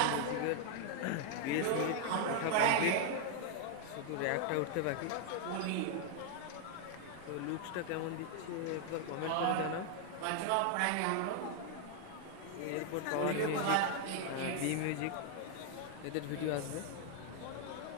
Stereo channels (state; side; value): different; both; correlation 0.00